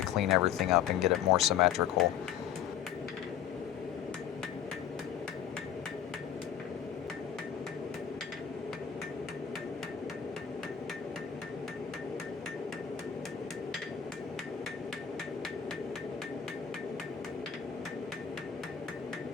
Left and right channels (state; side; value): quieter; right; 8.9 dB